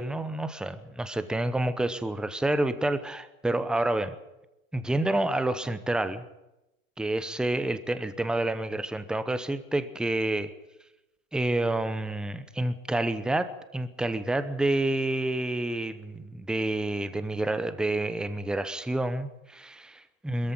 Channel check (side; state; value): both; normal; correlation 0.91